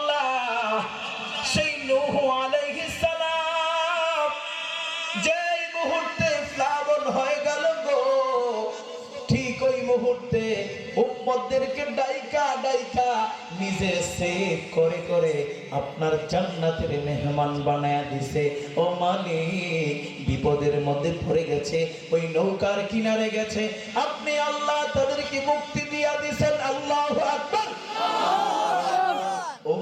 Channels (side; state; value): both; identical; correlation 1.00